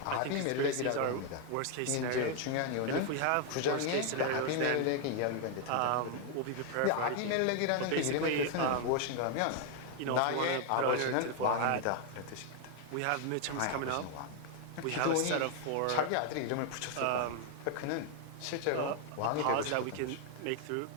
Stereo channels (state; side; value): different; both; correlation 0.00